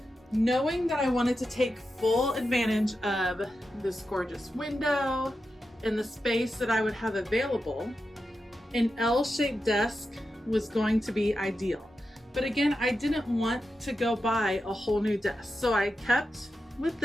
Knowing that I wanted to take full advantage of this gorgeous window and the space that I would have available, an L-shaped desk was going to be ideal. But again, I didn't want to go buy a whole new desk. So I kept with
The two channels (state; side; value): normal; both; correlation 0.89